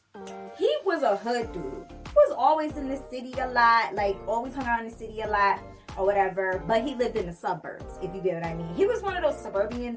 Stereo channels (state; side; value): identical; both; correlation 1.00